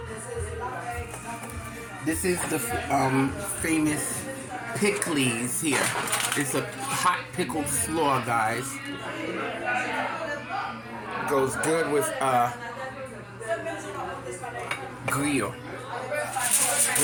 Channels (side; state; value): both; identical; correlation 1.00